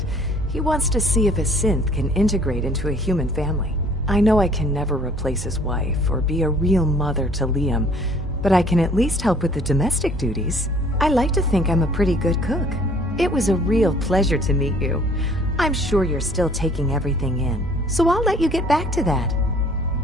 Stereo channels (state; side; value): normal; both; correlation 0.56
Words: He wants to see if a synth can integrate into a human family. I know I can never replace his wife or be a real mother to Liam, but I can at least help with the domestic duties. I like to think I'm a pretty good cook. It was a real pleasure to meet you. I'm sure you're still taking everything in, so I'll let you get back to that.